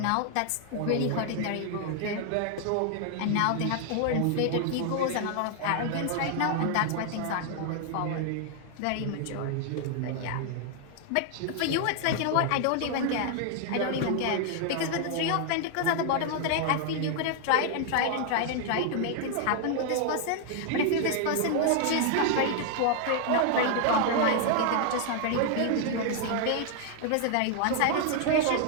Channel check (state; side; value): different; both; correlation 0.00